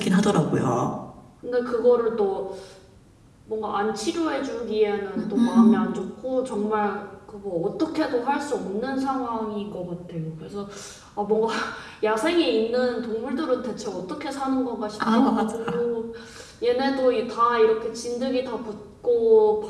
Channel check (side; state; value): both; identical; correlation 1.00